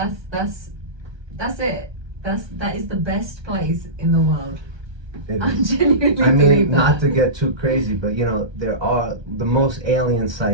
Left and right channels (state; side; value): late; left; 1.2 ms